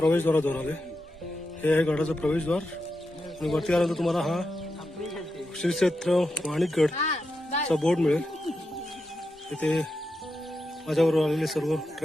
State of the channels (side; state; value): both; normal; correlation 0.87